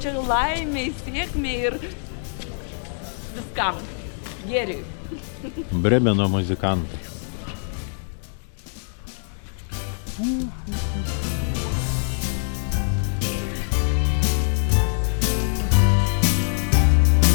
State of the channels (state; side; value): silent; right; 63 dB below the other